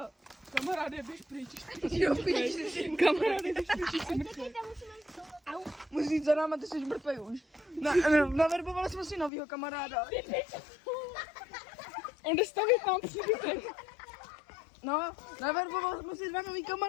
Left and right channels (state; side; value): drops out; right; at 9.3 s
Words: Kamaráde, běž pryč. Jo, píš. Kamaráde, běž pryč, jsi mrtvý. Musíš jít za náma, ty jsi mrtvý už. Naverbovali jsme si novýho kamaráda. On jde stavit nám příbytek. No, naverbovali jsme si 2 nový